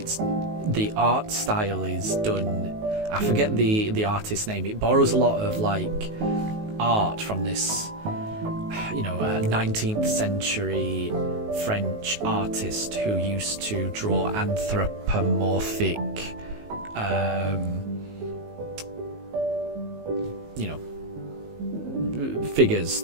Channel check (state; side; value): late; left; 19 ms